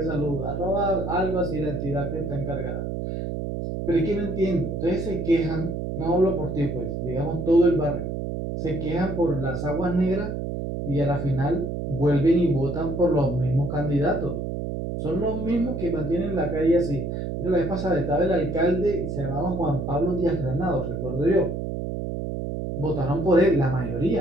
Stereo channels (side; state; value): right; noise; hum, 4 dB below the sound